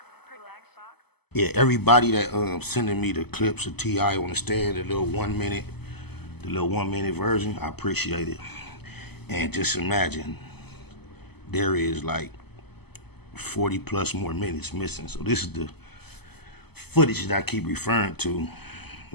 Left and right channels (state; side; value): late; right; 0.97 ms